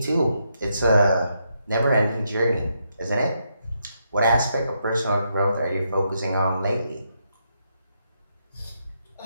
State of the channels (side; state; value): both; inverted; correlation -0.80